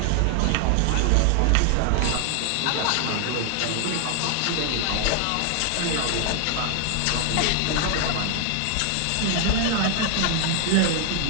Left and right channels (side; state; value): both; different; correlation 0.00